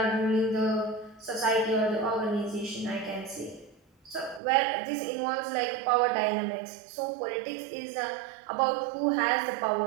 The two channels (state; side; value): drops out; left; at 4.4 s